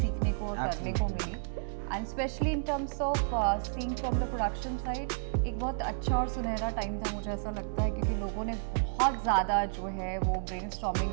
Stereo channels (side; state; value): left; silent; digital silence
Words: को और करने को मिली. And specially in terms of seeing from the production side, एक बहुत अच्छा और सुनहरा टाइम था, मुझे ऐसा लगता है, क्योंकि लोगों ने बहुत ज़्यादा जो है वो